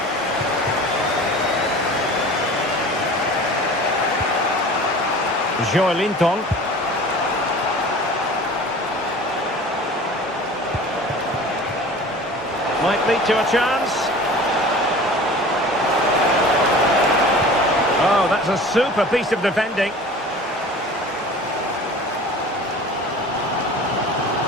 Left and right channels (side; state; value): both; normal; correlation 0.41